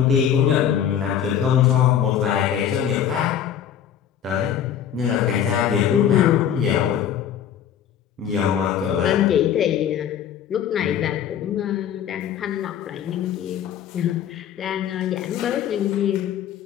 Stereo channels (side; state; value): right; quieter; 9.4 dB